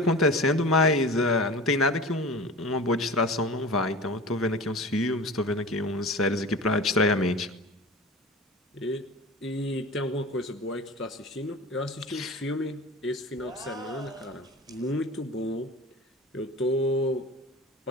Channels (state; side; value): normal; both; correlation 0.34